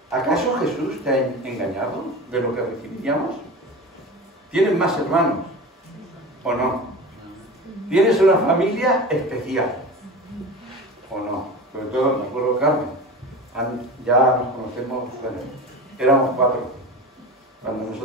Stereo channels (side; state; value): both; normal; correlation 0.30